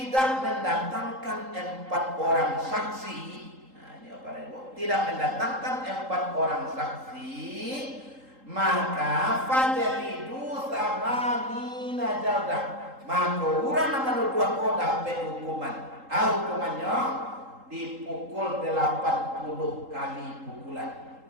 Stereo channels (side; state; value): left; late; 3.8 ms